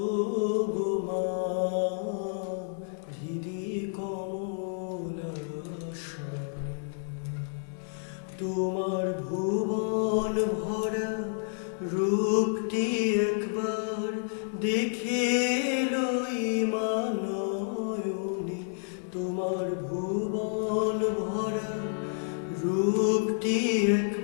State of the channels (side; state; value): right; silent; 58 dB below the other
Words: গো মা হৃদি কমলাসনে। তোমার ভুবন ভরা রূপটি একবার দেখে লই মানয়নে, তোমার ভুবন ভরা রূপটি